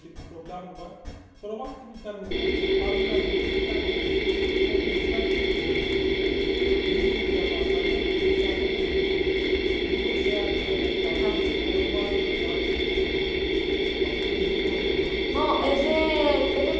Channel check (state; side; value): identical; both; correlation 1.00